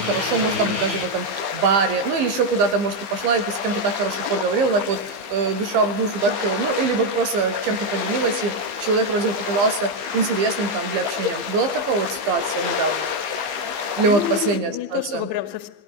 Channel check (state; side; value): late; left; 15 ms